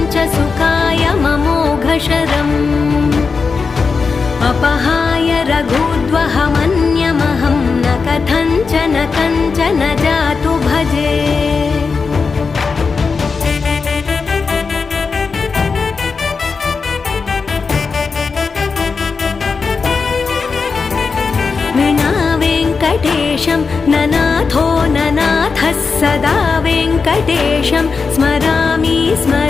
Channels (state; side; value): quieter; right; 4.9 dB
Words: च सुखाय ममोघशरम् अपहाय रघुद्वहमन्यमहं न कथञ्चन कञ्चन जातु भजे। विना वेङ्कटेशं ननाथो ननाथः सदा वेङ्कटेशं स्मरामि